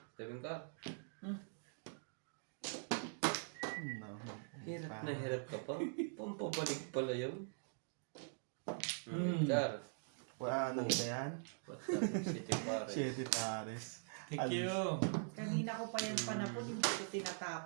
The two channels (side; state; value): left; silent; digital silence